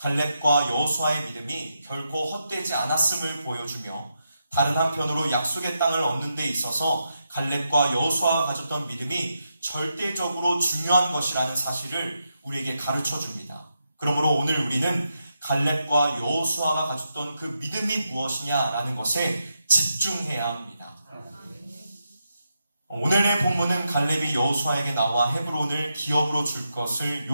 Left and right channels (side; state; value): both; inverted; correlation -0.84